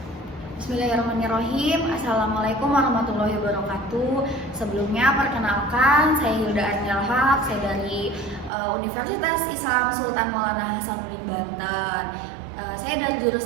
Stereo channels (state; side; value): drops out; left; at 8.5 s